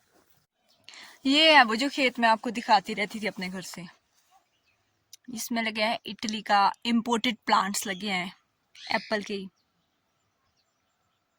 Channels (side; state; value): both; identical; correlation 1.00